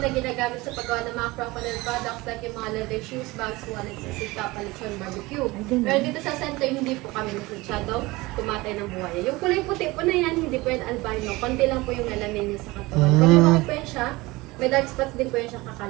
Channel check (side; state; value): left; quieter; 21.6 dB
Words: ginagamit sa paggawa ng mga crocodile products like yung mga leather shoes, bags, wallets, sisika, palitsyon, barbecue. Pero dito sa center, hindi po kami masyadong kumatay ng buhaya. Yung kulay puti po na yan, hindi po yan albino. Konti lang po yung melanin niya sa katawan. Pag lumaki po yan siya, may dark spots din po yan siya,